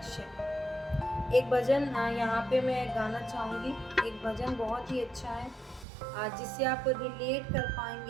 है। एक भजन यहाँ पे मैं गाना चाहूँगी। एक भजन बहुत ही अच्छा है, जिससे आप रिलेट कर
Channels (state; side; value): drops out; left; at 5.9 s